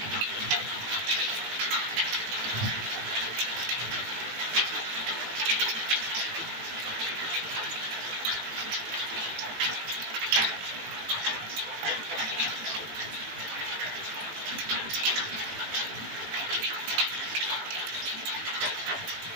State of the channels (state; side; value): late; left; 18 ms